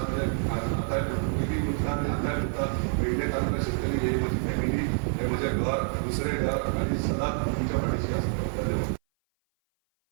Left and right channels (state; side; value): silent; left; 57 dB below the other